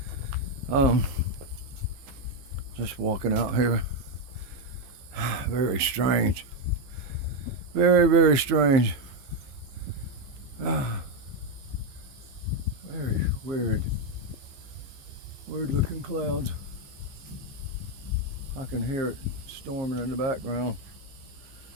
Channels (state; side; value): late; left; 15 ms